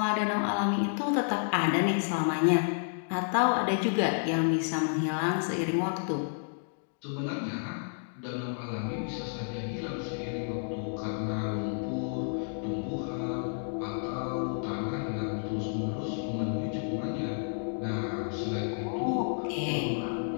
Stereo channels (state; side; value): silent; right; digital silence